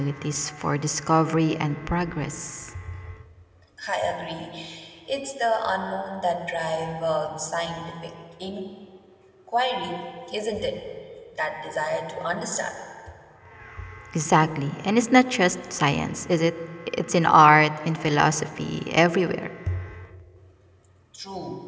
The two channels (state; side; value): identical; both; correlation 1.00